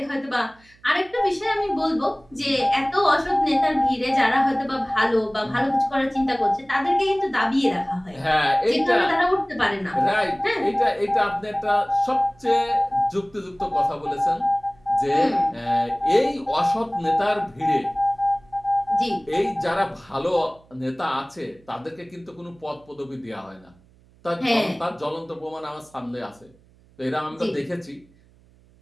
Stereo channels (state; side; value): noise; right; hum, 29 dB below the sound